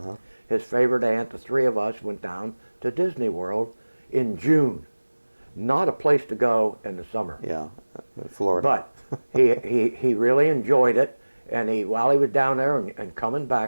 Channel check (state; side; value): inverted; both; correlation -1.00